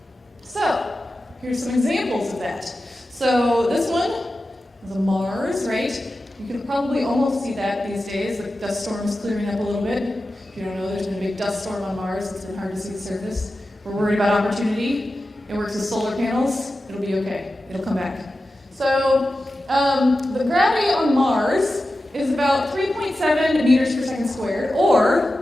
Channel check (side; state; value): both; normal; correlation 0.93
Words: So, here's some examples of that. So this one is a Mars, right? You can probably almost see that these days. The dust storm's clearing up a little bit. If you don't know, there's been a big dust storm on Mars. It's been hard to see the surface. We're worried about opportunity. It works with solar panels. It'll be okay. It'll come back. So the gravity on Mars is about 3.7 meters per second squared, or